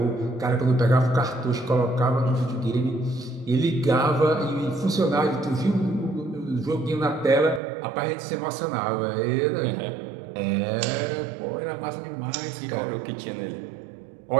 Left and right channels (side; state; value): left; drops out; at 7.6 s